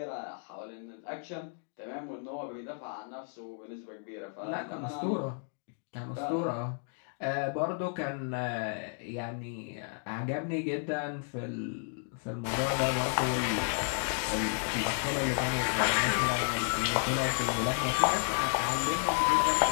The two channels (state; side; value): silent; right; 56 dB below the other